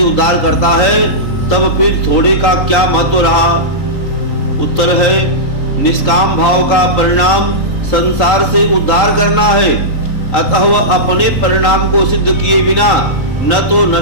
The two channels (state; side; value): late; right; 3.8 ms